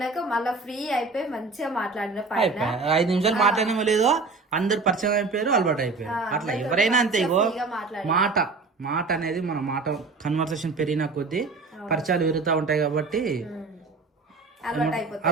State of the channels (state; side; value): quieter; left; 4.0 dB